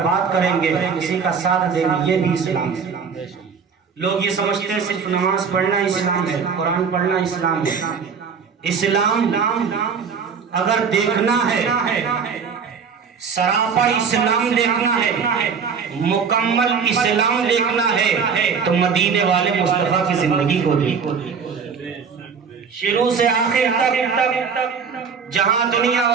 بات کریں گے، کسی کا ساتھ دیں گے، یہ بھی اسلام ہے۔ لوگ یہ سمجھتے ہیں صرف نماز پڑھنا اسلام ہے، قرآن پڑھنا اسلام ہے۔ اسلام اگر دیکھنا ہے، سراپا اسلام دیکھنا ہے، مکمل اسلام دیکھنا ہے تو مدینے والے مصطفیٰ کی زندگی کو دیکھو۔ شروع سے آخر تک جہاں دنیا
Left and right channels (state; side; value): quieter; left; 6.1 dB